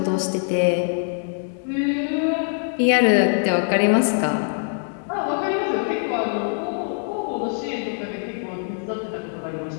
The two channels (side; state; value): right; silent; digital silence